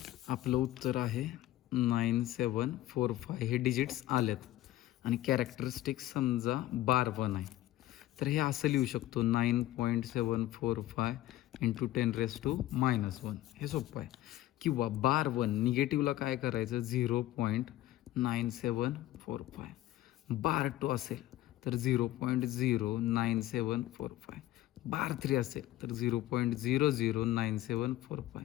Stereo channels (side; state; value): right; quieter; 14.9 dB